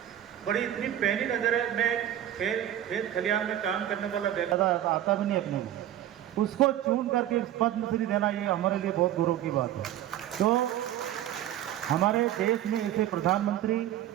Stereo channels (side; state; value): left; quieter; 12.2 dB